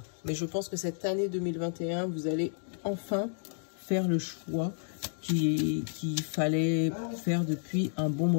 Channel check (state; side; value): silent; right; digital silence